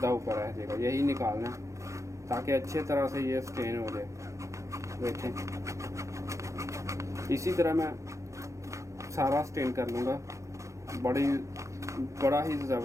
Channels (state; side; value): late; left; 0.15 ms